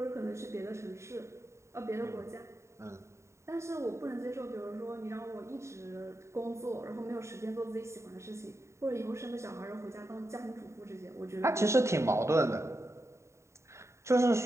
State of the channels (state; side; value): late; left; 0.14 ms